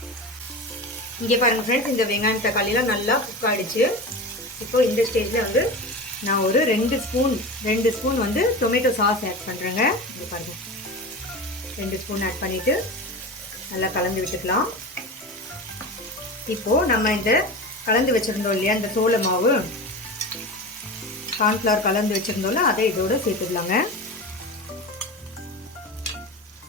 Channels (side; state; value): both; normal; correlation 0.28